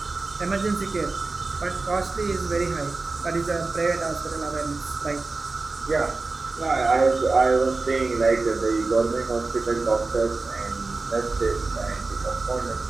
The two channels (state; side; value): quieter; left; 3.7 dB